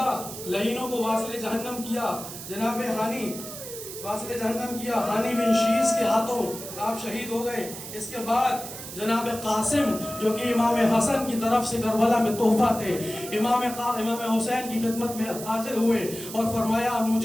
لعینوں کو واصل جہنم کیا. جناب ہانی واصل جہنم کیا. ہانی بن شیس کے ہاتھوں آپ شہید ہو گئے. اس کے بعد جناب قاسم جو کہ امام حسن کی طرف سے کربلا میں تحفہ تھے، امام حسین کی خدمت میں حاضر ہوئے اور فرمایا امو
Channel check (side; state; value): right; noise; hiss, 11 dB below the sound